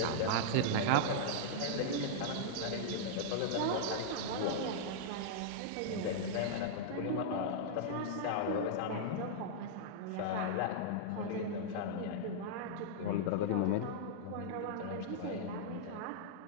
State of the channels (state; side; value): different; both; correlation -0.02